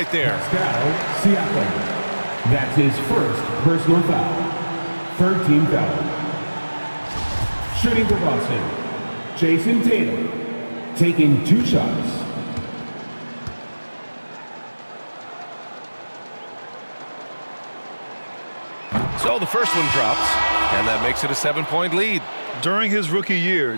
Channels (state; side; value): inverted; both; correlation -1.00